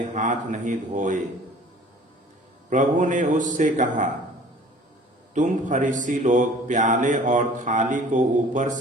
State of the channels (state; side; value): normal; both; correlation 0.48